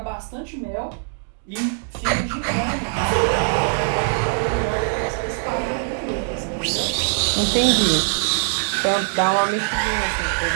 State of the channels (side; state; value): left; silent; 63 dB below the other